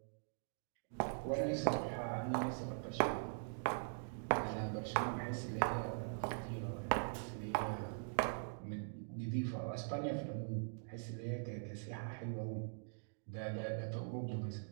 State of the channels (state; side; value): silent; left; digital silence